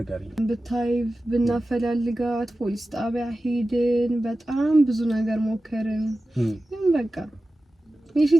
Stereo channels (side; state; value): both; normal; correlation 0.95